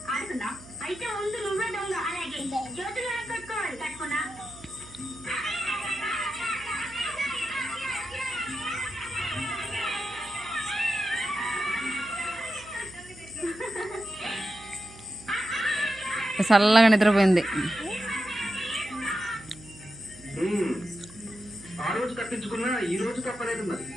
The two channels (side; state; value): right; noise; hum, 20 dB below the sound